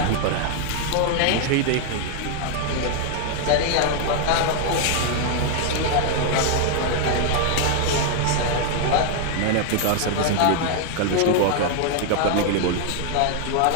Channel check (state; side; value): different; both; correlation 0.00